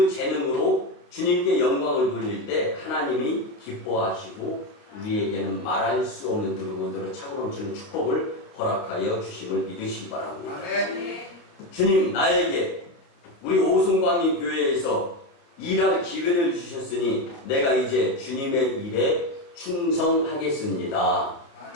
재능으로 주님께 영광을 돌릴 때 하나님이 기뻐하시고 우리에게는 말할 수 없는 누르고누르 차고 넘치는 축복을 허락하여 주심을 믿으시기 바랍니다. 주님 나에게 우리 오송광림 교회에서 일할 기회를 주셨으니 내가 이제 주님의 일에 충성하겠습니다.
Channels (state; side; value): late; right; 29 ms